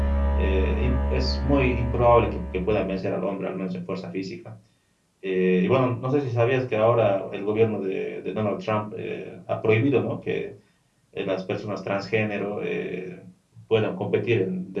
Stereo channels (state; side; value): identical; both; correlation 1.00